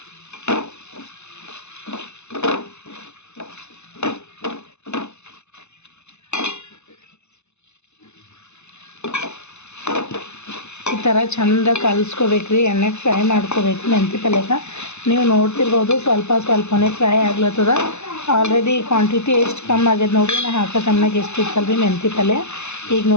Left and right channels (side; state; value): right; late; 0.82 ms